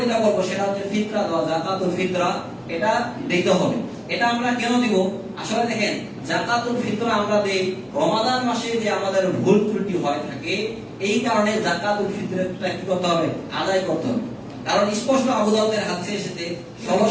যেটা বলবো সেটা হচ্ছে ফিতরা দেওয়া, যাকাতুল ফিতরা, এটা দিতে হবে। এটা আমরা কেন দিব? আসলে দেখেন, যাকাতুল ফিতরা আমরা দেই রমাদান মাসে যে আমাদের ভুল ত্রুটি হয় থাকে, এই কারণে যাকাতুল ফিতরাটা কি করতে হবে? আদায় করতে হবে। কারণ স্পষ্ট আবু দাউদের হাদিসে এসেছে,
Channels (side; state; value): both; identical; correlation 1.00